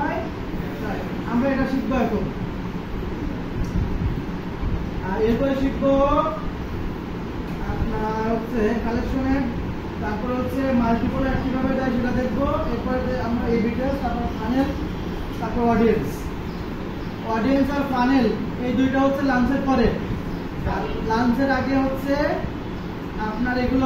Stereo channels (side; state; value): both; identical; correlation 1.00